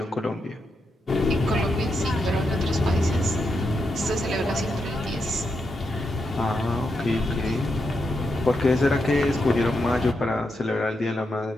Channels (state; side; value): normal; both; correlation 0.84